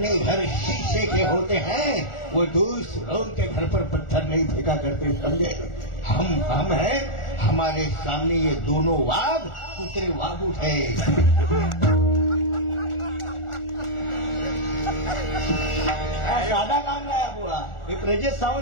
घर शीशे के होते हैं, वो दूसरों के घर पर पत्थर नहीं फेंका करते, समझे. हम हैं, हमारे सामने ये दोनों वाघ कुत्रे वाघ उठे. साधा काम नाही बुवा. हे प्रजेश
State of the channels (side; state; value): right; late; 1.4 ms